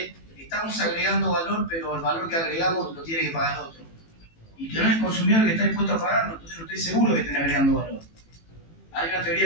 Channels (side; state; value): right; late; 18 ms